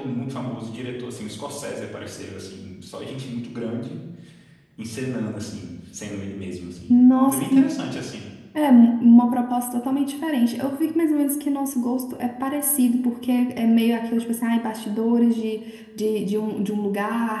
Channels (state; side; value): identical; both; correlation 1.00